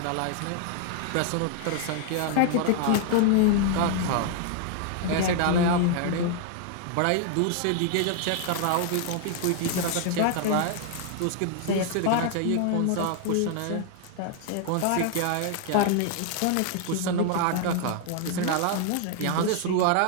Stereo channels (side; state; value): both; different; correlation 0.00